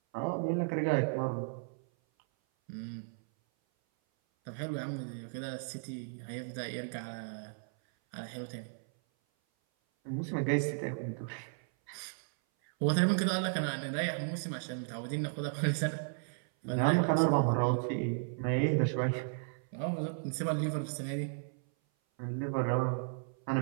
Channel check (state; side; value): silent; left; 55 dB below the other